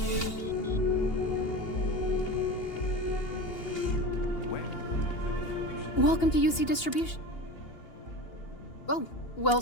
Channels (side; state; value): right; late; 2.8 ms